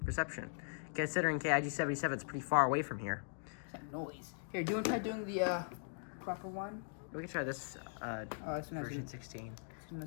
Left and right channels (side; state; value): right; silent; digital silence